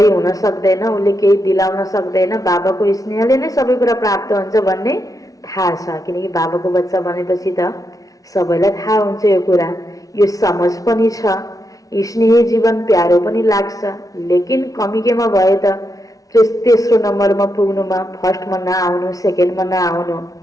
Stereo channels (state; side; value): late; right; 0.17 ms